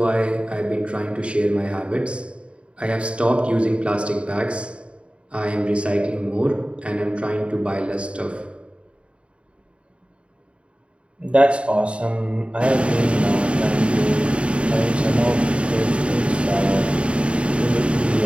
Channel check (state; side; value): late; left; 0.059 ms